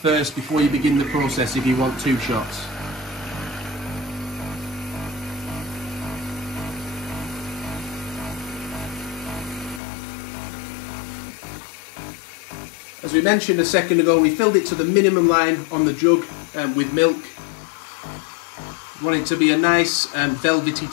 before you begin the process if you want 2 shots. As we mentioned a second ago, we filled it to the minimum line on the jug with milk. Want it to be a nice velvety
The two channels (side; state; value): right; drops out; at 9.8 s